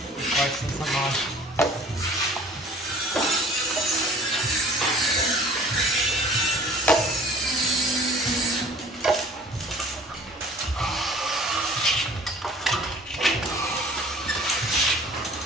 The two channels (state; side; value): normal; both; correlation 0.49